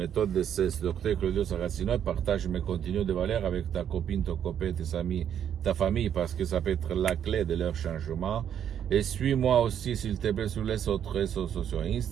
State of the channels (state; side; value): quieter; left; 9.3 dB